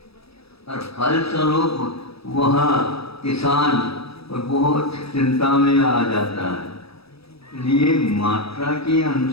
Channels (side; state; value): right; late; 0.77 ms